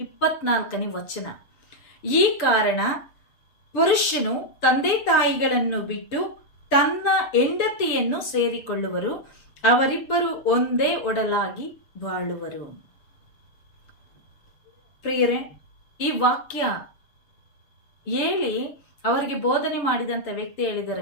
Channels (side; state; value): right; late; 6.9 ms